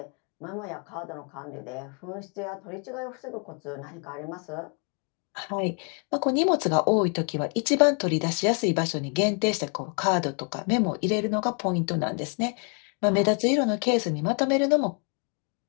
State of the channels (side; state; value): right; quieter; 39.4 dB